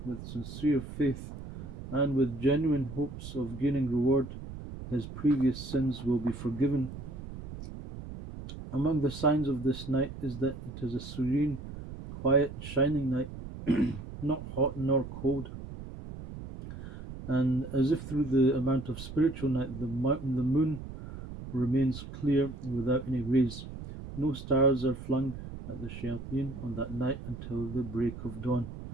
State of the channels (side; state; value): right; noise; rumble, 11 dB below the sound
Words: with sincere faith and with genuine hopes of gaining reward, his previous sins will be forgiven. Among the signs of this night is that it is a serene, quiet, shining night, not hot nor cold, and as if through the amount of spiritual night the moon remains clear without any rays. No stars are flung at the shayateen on that night until the break of dawn.